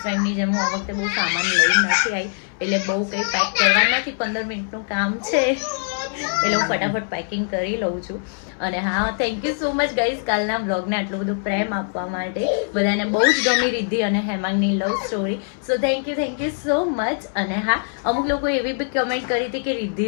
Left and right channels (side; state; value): right; silent; 60 dB below the other